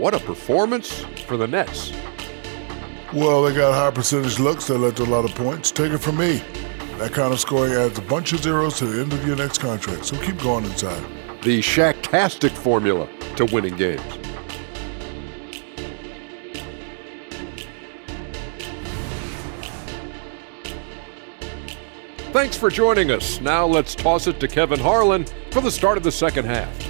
a performance for the Nets. Well, they got high percentage looks that led to a lot of points. Take it from me. That kind of scoring adds a bunch of zeros to the end of your next contract, so keep going inside. The Shaq-tastic formula to winning games. Thanks for joining us. Now let's toss it to Kevin Harlan for the start of the second half.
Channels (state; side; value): silent; left; 64 dB below the other